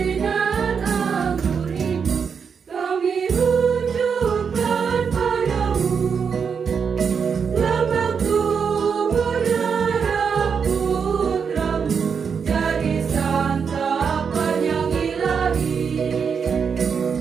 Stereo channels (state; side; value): quieter; left; 6.4 dB